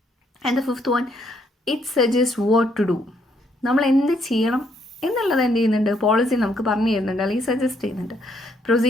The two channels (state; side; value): normal; both; correlation 0.71